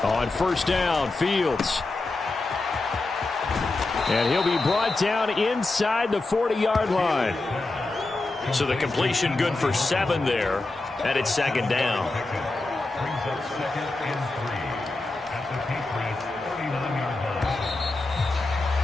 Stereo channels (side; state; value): right; quieter; 3.2 dB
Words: On first down, Fields. And he'll be brought down inside the 40-yard line. So the completion good for 7 there, and it's second down.